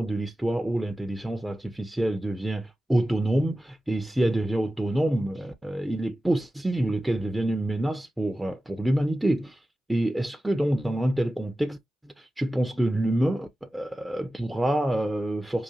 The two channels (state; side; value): normal; both; correlation 0.94